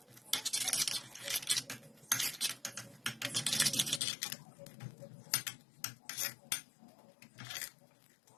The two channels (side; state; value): right; drops out; at 4.0 s